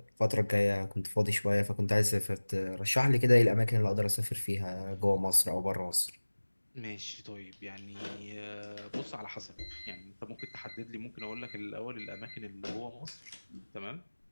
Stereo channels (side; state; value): both; inverted; correlation -1.00